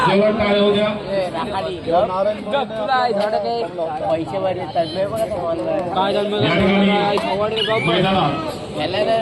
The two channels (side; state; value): both; identical; correlation 1.00